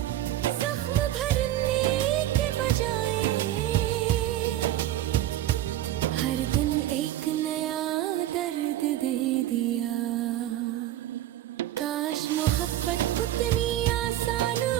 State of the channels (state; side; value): quieter; left; 13.3 dB